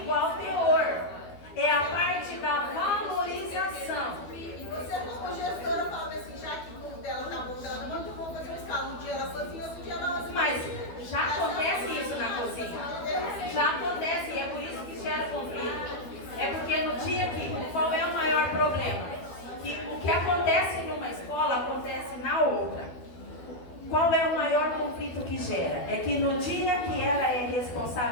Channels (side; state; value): right; late; 12 ms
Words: igual teor. É a parte da valorização. Você, como gestora, fala assim, já que o dela tá bom, dela não muito bom fazer uma escala. Um dia ela sozinha, outro dia ela sozinha. Mas já acontece isso na cozinha. Já acontece, e é por isso que gera conflito. É porque no dia que, qual é o maior problema? Que o que acontece numa escola, acontece na outra. Qual é o maior conflito que gera? É que no dia que ela é